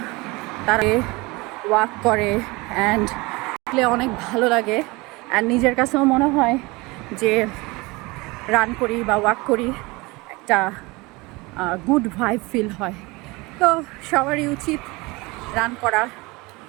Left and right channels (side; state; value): left; quieter; 24.0 dB